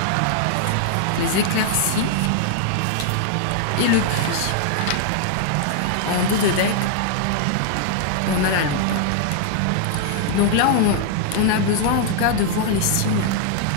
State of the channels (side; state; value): both; different; correlation -0.01